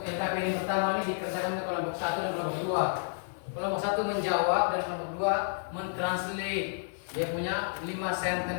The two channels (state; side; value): silent; right; 57 dB below the other